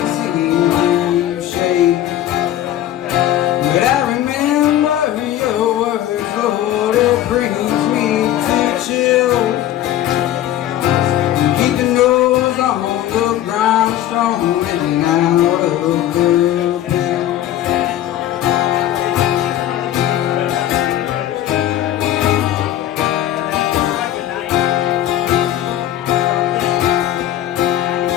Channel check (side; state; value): right; quieter; 12.5 dB